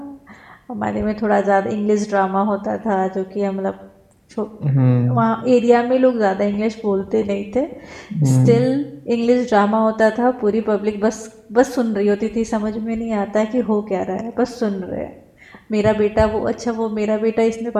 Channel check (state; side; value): identical; both; correlation 1.00